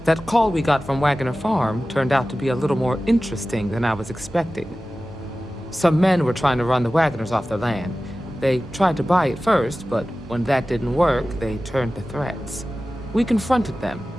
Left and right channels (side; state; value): both; normal; correlation 0.96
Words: That call we got from Wagoner Farm turned out to be a little more interesting than I was expecting. Some men were trying to run the Wagoners off their land. They tried to buy it first, but when that didn't work, they turned to threats. We confronted them,